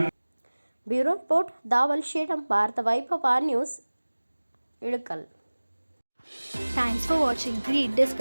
ಬ್ಯೂರೋ ರಿಪೋರ್ಟ್ ದಾವಲ್ ಶೇಡಂ, ಭಾರತ ವೈಭವ news, Ilkal. Thanks for watching. Read,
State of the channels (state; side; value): inverted; both; correlation -1.00